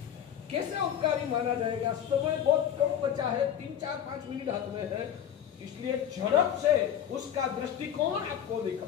कैसे उपकारी माना जाएगा? समय बहुत कम बचा है, 3, 4, 5 मिनट हाथ में है, इसलिए झड़प से उसका दृष्टिकोण आपको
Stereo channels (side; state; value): right; quieter; 9.5 dB